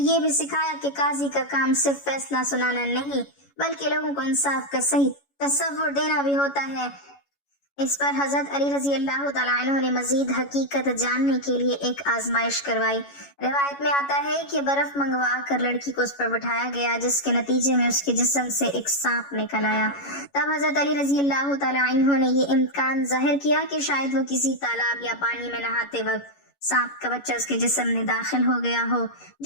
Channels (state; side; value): late; right; 11 ms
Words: بھی سکھایا کہ قاضی کا کام صرف فیصلہ سنانا نہیں بلکہ لوگوں کو انصاف کا صحیح تصور دینا بھی ہوتا ہے۔ اس پر حضرت علی رضی اللہ تعالیٰ عنہ نے مزید حقیقت جاننے کے لیے ایک آزمائش کروائی۔ روایت میں آتا ہے کہ برف منگوا کر لڑکی کو اس پر بٹھایا گیا جس کے نتیجے میں اس کے جسم سے ایک سانپ نکل آیا۔ تب حضرت علی رضی اللہ تعالیٰ عنہ نے یہ امکان ظاہر کیا کہ شاید وہ کسی تالاب یا پانی میں نہاتے وقت سانپ کا بچہ اس کے جسم میں داخل ہو گیا ہو،